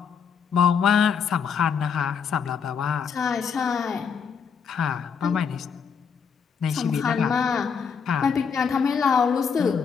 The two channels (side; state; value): right; quieter; 6.5 dB